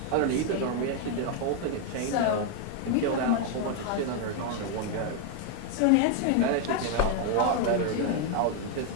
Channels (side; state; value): both; different; correlation 0.01